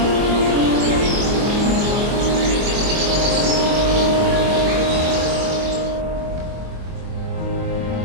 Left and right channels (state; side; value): late; left; 24 ms